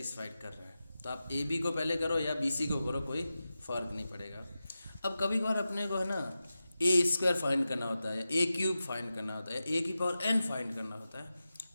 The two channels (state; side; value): inverted; both; correlation -0.93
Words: कर रहा है। तो आप AB को पहले करो या BC को करो, कोई फ़र्क नहीं पड़ेगा। अब कभी कभार अपने को है ना A² फाइंड करना होता है, A³ फाइंड करना होता है, A⁴n फाइंड करना होता है।